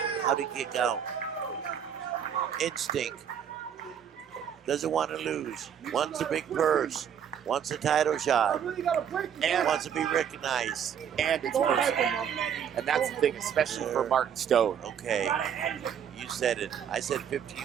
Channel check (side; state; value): left; quieter; 8.5 dB